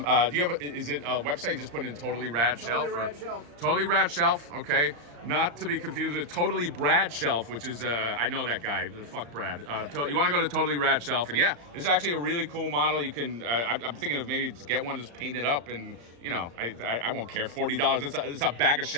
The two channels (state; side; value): late; left; 35 ms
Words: do you have, is it a website you just put in Totally Rad Shelf? Totally Rad Shelf. Totally Rad Shelf, okay. Not to be confused with Totally Brad Shelf, which is, I know that guy, fuck Brad. You want to go to Totally Rad Shelf, and yeah, it's actually a really cool model. You can, I'm thinking of maybe just get one, just paint it up, and I won't care, $40. It's a bag of